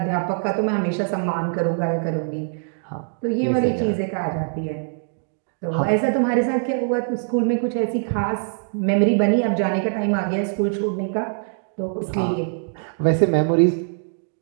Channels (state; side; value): silent; left; digital silence